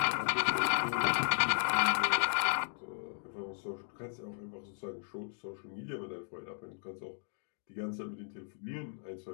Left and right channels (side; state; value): right; silent; digital silence